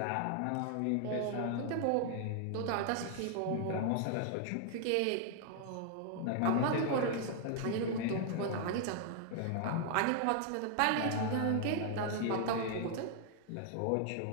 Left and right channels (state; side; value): different; both; correlation 0.00